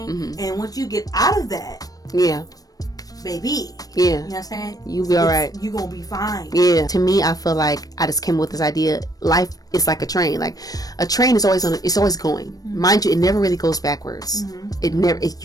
And once you get out of that, baby, Yeah. You know what I'm saying? You'll be alright. You gonna be fine. Yeah. To me, I feel like I just came with this idea. Life is like a train. Like a train is always it's always going. Mind you, it never really goes backwards. It never.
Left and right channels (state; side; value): late; right; 0.18 ms